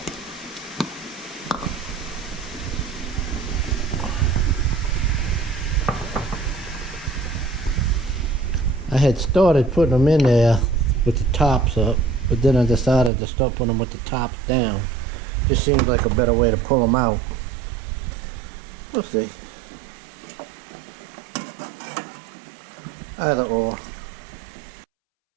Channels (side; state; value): left; drops out; at 13.1 s